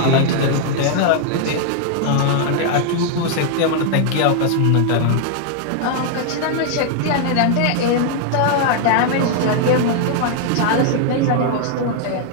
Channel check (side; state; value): both; different; correlation 0.00